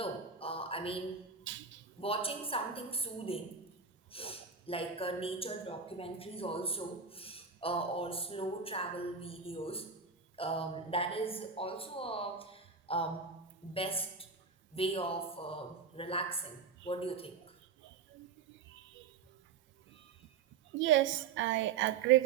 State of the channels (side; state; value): left; quieter; 5.8 dB